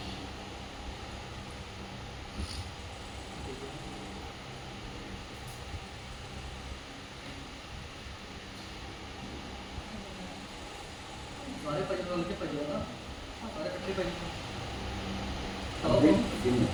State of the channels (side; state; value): both; identical; correlation 1.00